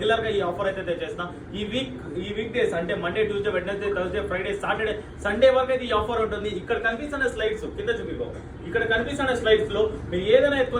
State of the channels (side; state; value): both; identical; correlation 1.00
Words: గా ఈ ఆఫర్ అయితే తెచ్చేస్తాం. ఈ వీక్ డేస్ అంటే Monday, Tuesday, Wednesday, Thursday, Friday, Saturday, Sunday వరకు అయితే ఈ ఆఫర్ ఉంటుంది. ఇక్కడ కనిపిస్తున్న స్లైడ్స్ కింద చూపికో. ఇక్కడ కనిపిస్తున్న స్లైడ్స్ లో మీరు ఏదైనా